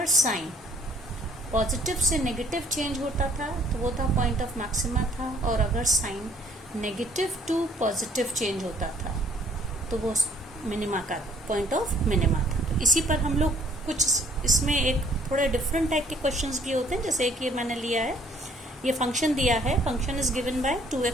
साइन पॉजिटिव से नेगेटिव चेंज होता था तो वो था पॉइंट ऑफ मैक्सिमा था, और अगर sign negative to positive change होता था तो वो मिनिमा का पॉइंट ऑफ मिनिमा था। तो इसी पर हम लोग कुछ इसमें एक थोड़े डिफरेंट टाइप के क्वेश्चंस भी होते हैं। जैसे एक ये मैंने लिया है, ये फंक्शन दिया है, function is given by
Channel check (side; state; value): both; normal; correlation 0.60